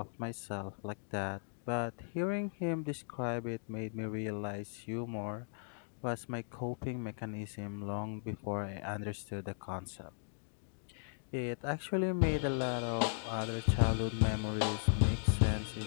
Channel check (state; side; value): silent; right; digital silence